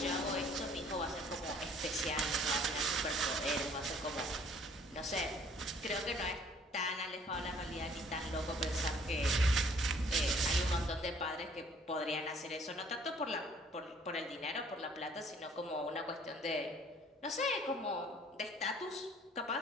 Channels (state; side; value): normal; both; correlation 0.57